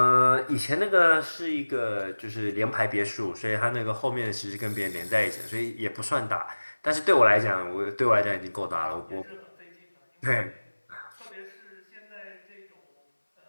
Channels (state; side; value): inverted; both; correlation -1.00